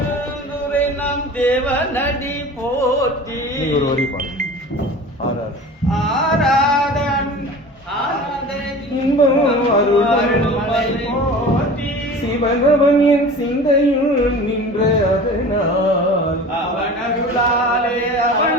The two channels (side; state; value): both; normal; correlation 0.38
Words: நம் தேவனடி போற்றி ஒரு வரி பாருங்க ஆராதன் இன்பம் அருள் போற்றி சிவனவன் என் சிந்தையுள் நின்ற அதனால் அவன் அருளாலே